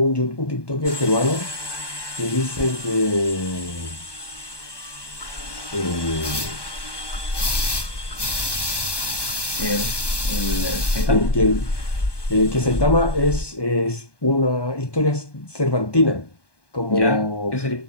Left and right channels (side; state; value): right; late; 1.2 ms